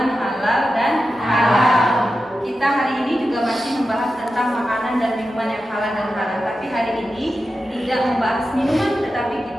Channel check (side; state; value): both; normal; correlation 0.91